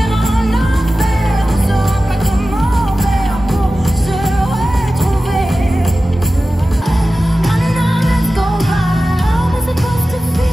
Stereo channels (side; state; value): both; normal; correlation 0.95